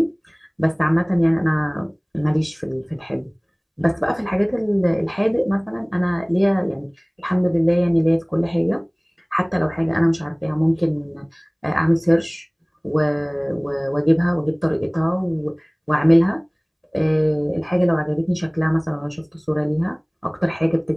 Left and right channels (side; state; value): both; identical; correlation 1.00